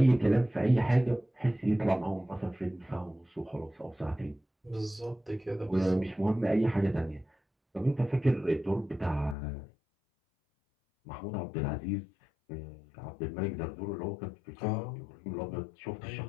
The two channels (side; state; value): right; drops out; at 9.3 s